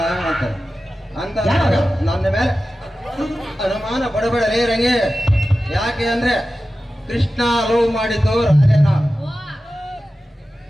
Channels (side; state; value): both; normal; correlation 0.94